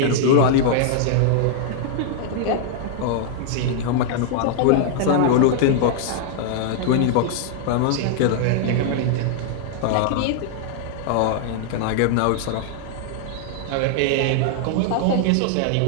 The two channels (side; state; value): both; different; correlation -0.01